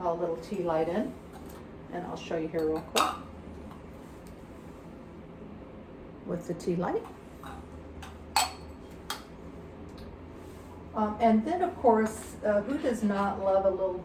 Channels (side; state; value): both; identical; correlation 1.00